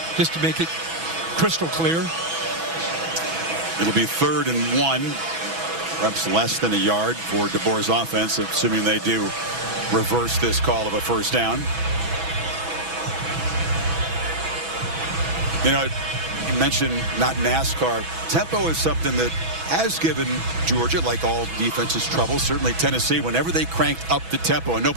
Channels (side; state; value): left; late; 6.1 ms